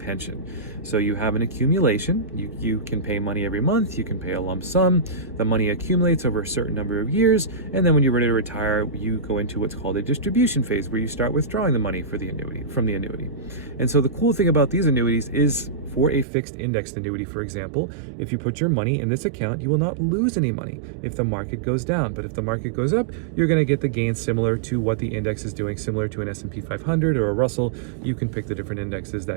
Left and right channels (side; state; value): left; drops out; at 16.2 s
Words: So you have an accumulation. You can pay money every month. You can pay a lump sum. The money accumulates over a certain number of years, and then when you're ready to retire, you go into what's called a distribution phase, where you start withdrawing the money for the annuity from the annuity. And so the cool thing about these annuities is, for a fixed indexed annuity, for example, if you put your money in this account, you will not lose any money if the market goes down. But if the market goes up, you're going to get the gains similar to what the index is doing, similar to an S&P 500 or a Russell. You can pick the different indexes